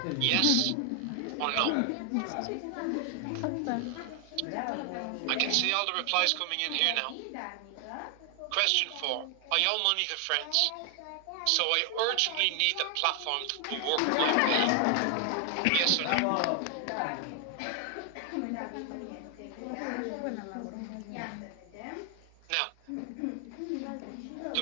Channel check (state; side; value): different; both; correlation 0.00